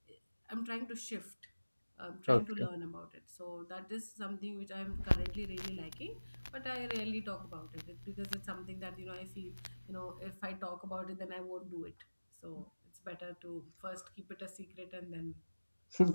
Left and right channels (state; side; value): inverted; both; correlation -1.00